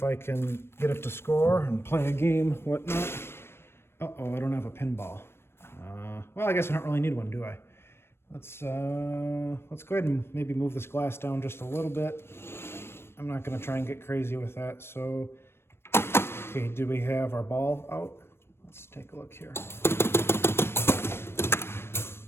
I can get it to score and play a game, whatnot. Uh-oh, I don't have a pinball. Well, I guess I don't really need one, do I? Let's go ahead and maybe move this glass down just a little bit. I'm not going to try and get crazy with that. So, okay, do we have our ball out? Let's take a look here.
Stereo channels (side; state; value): right; late; 0.12 ms